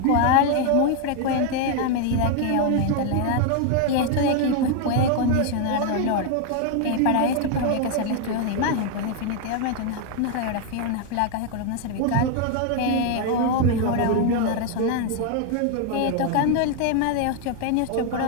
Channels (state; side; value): different; both; correlation 0.01